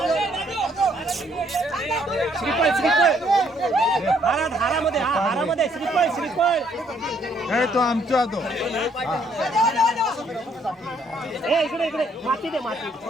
श्रीफळ श्रीफळ हारामध्ये हारामध्ये श्रीफळ श्रीफळ तो आमचा तो इकडे इकडे माती दे माती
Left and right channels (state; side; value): normal; both; correlation 0.68